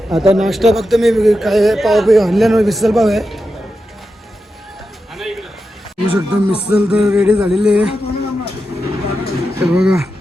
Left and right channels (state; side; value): normal; both; correlation 0.89